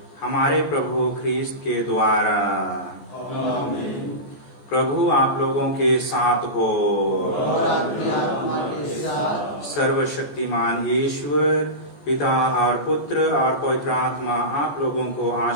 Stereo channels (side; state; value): right; late; 14 ms